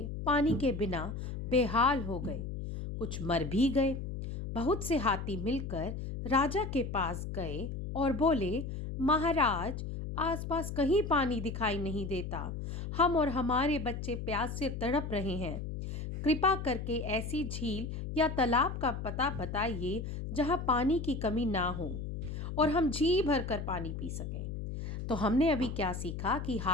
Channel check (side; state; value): left; noise; hum, 6 dB below the sound